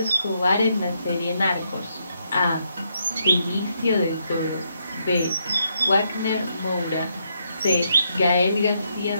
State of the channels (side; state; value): both; inverted; correlation -0.77